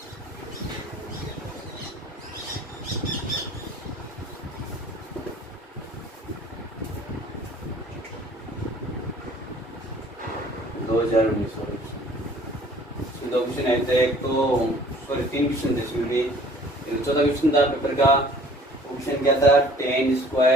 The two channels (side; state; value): both; normal; correlation 0.52